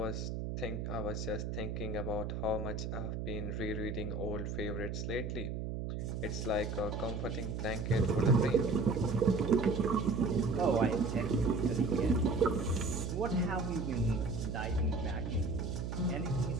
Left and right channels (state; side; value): noise; right; hum, 4 dB below the sound